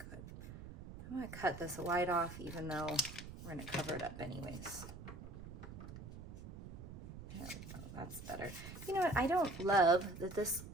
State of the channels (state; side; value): noise; right; rumble, 12 dB below the sound